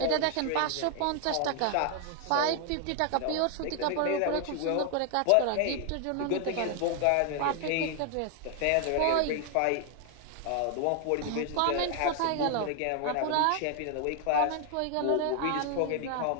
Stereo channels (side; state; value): both; different; correlation 0.00